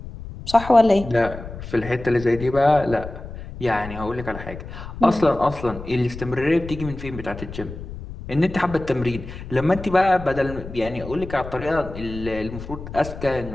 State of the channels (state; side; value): noise; left; rumble, 12 dB below the sound